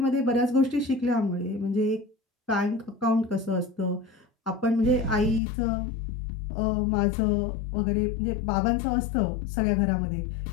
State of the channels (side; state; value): right; drops out; at 5.4 s